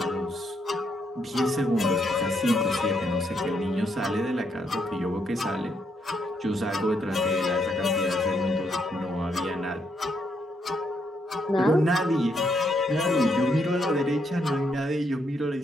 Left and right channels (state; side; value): normal; both; correlation 0.76